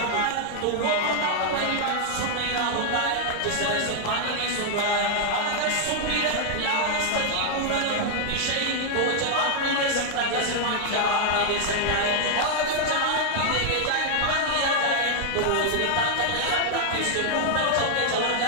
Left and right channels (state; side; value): different; both; correlation 0.00